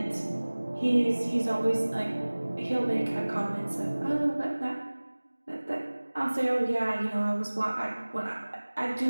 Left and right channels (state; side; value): inverted; both; correlation -1.00